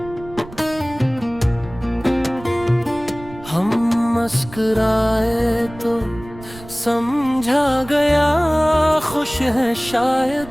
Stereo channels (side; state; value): right; noise; rumble, 17 dB below the sound